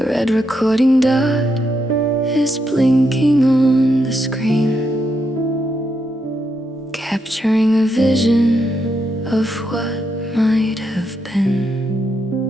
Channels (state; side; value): normal; both; correlation 0.81